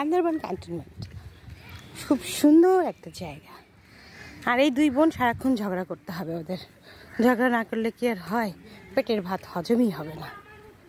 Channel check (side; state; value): both; identical; correlation 1.00